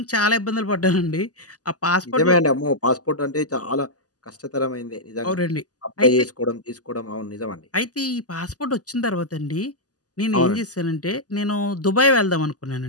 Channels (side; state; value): right; late; 0.67 ms